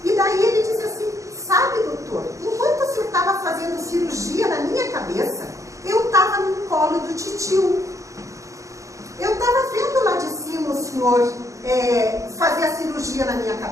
E daí ele disse assim: sabe, doutor, enquanto o senhor estava fazendo cirurgia na minha cabeça, eu estava no colo do titio. Eu estava vendo lá de cima o senhor fazer a cirurgia na minha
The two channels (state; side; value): late; left; 0.15 ms